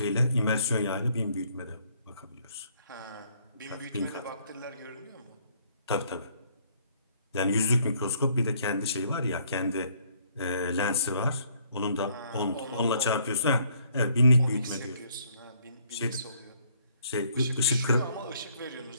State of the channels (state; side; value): inverted; both; correlation -0.65